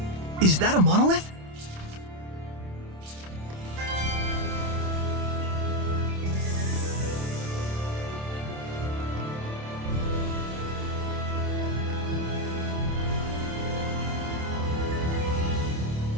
Is that a monolith?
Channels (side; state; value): left; late; 27 ms